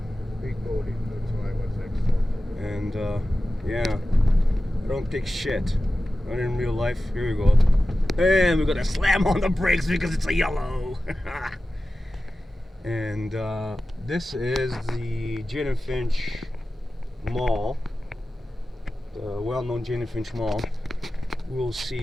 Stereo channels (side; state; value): both; normal; correlation 0.94